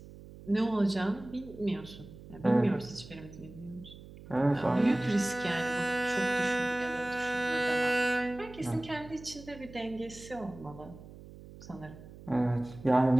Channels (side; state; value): right; noise; hum, 17 dB below the sound